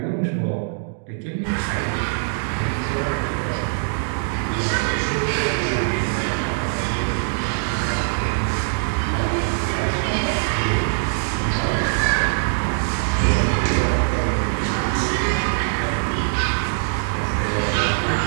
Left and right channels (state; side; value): silent; left; digital silence